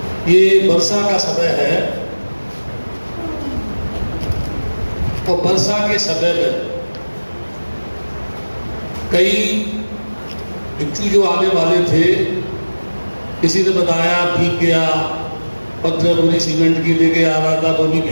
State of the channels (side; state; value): both; inverted; correlation -1.00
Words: ये वर्षा का समय है और वर्षा के समय में कई भिक्षु जो आने वाले थे, किसी ने बताया भीग गया, पत्र पूरी सीमेंट की लेके आ रहा था वो भी